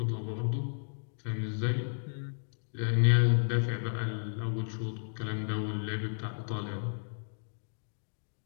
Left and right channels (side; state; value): right; silent; digital silence